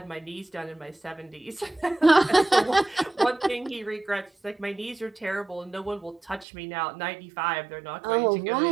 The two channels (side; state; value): left; drops out; at 6.5 s